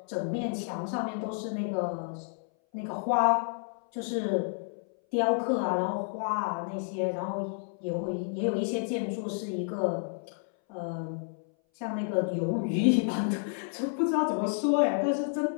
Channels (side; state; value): right; silent; 58 dB below the other